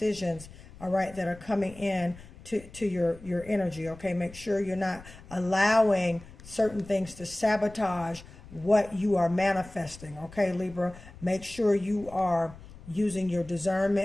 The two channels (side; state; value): left; noise; rumble, 19 dB below the sound